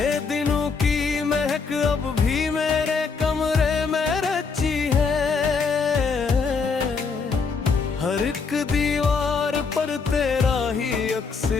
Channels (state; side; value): quieter; right; 5.0 dB